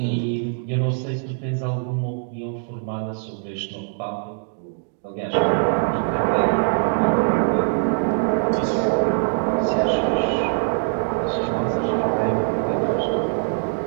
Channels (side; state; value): left; silent; 64 dB below the other